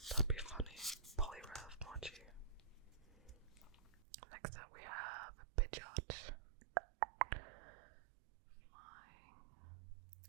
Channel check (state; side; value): drops out; left; at 4.0 s